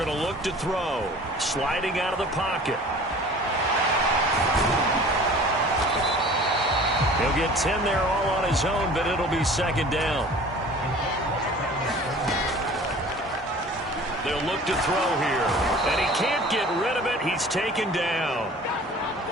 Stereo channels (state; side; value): normal; both; correlation 0.45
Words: to look to throw. Sliding out of the pocket. He'll get 10 there all on his own, but it'll be second down. They'll look to throw here. And he can't get rid of it. He's taken down.